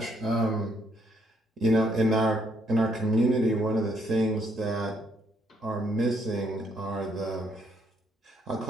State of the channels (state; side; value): normal; both; correlation 0.71